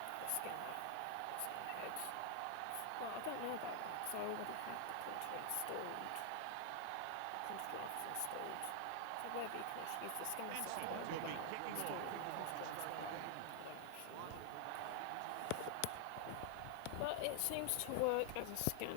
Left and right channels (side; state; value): both; different; correlation 0.00